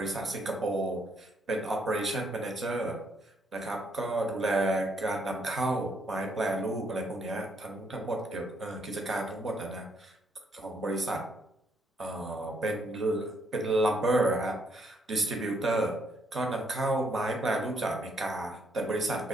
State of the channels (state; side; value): normal; both; correlation 0.72